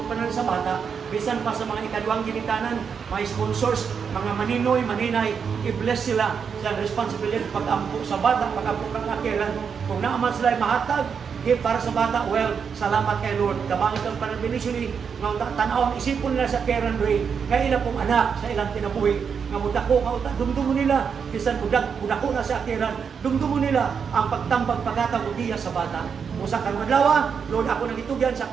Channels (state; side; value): quieter; left; 6.5 dB